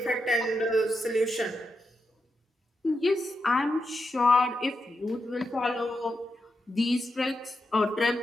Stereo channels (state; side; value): normal; both; correlation 0.86